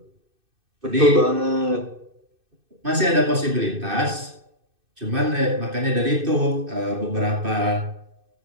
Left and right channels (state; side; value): late; left; 2.6 ms